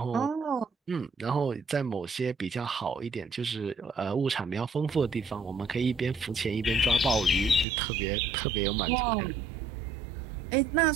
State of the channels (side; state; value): left; drops out; at 7.7 s